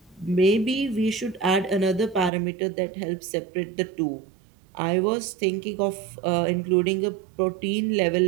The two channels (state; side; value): drops out; left; at 2.3 s